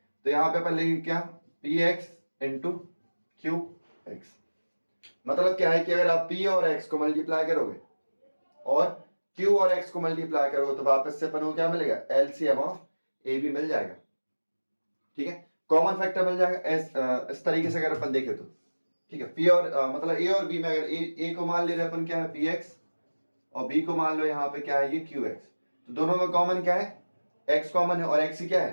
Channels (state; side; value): inverted; both; correlation -1.00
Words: यहाँ पे अपन लेंगे क्या, P x into Q x. मतलब क्या है कि अगर आप p और x को मल्टीप्लाई करोगे और q और x को मल्टीप्लाई करोगे तो वापस से अपन को क्या मिलेगा, एलसीएम ऑफ ए बी मिल जाएगा। ठीक है, कॉमन फैक्टर मिल जाएगा इस तरीके से अगर अपन देखें तो। ठीक है, p और मतलब a और b में अगर a को मान ले रहे अपन क्या है px और b को मान लो यहाँ पे क्या है ये qx, तो दोनों में कॉमन क्या है, x कॉमन है और x ही क्या